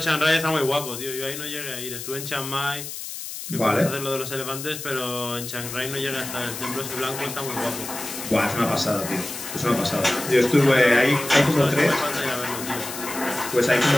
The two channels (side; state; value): left; noise; hiss, 9 dB below the sound